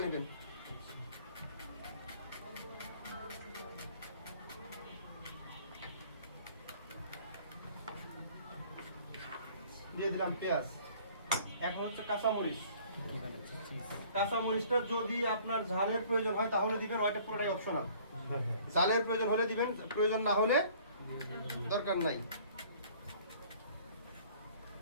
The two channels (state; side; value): inverted; both; correlation -0.53